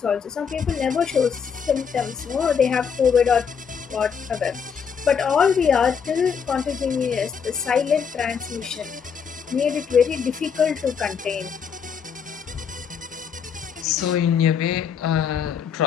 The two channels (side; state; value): right; quieter; 6.7 dB